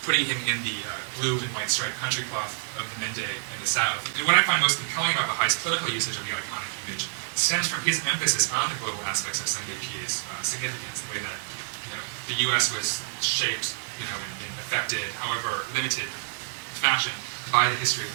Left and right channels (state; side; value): silent; left; digital silence